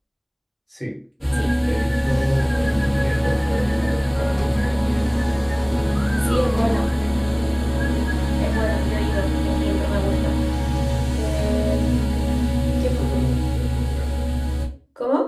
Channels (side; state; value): both; identical; correlation 1.00